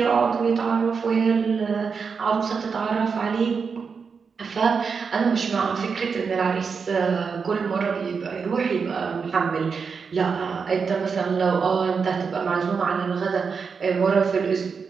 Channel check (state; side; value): quieter; left; 5.6 dB